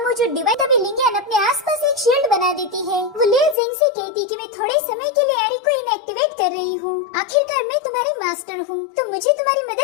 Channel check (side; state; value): right; drops out; at 3.6 s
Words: मौजूद डिवाइन तभी लिंगियन अपने आसपास एक शील्ड बना देती है। वो लियो जिंग से कहती कि मैं थोड़े समय के लिए एरी को इनएक्टिवेट कर रही हूँ, आखिरकार मैं तुम्हारी मास्टर हूँ, तो मुझे तुम्हारी